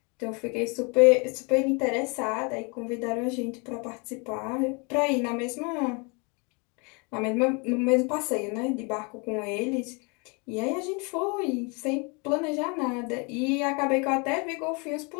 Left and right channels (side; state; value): right; quieter; 31.9 dB